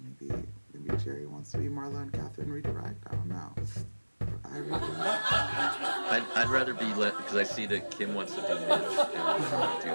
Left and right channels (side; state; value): both; inverted; correlation -1.00